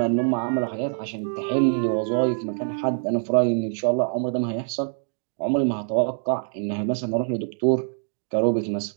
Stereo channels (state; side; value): silent; left; 60 dB below the other